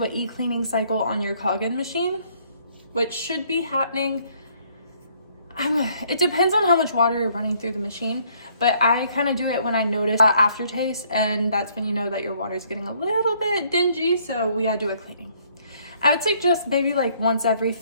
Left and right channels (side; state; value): both; inverted; correlation -0.64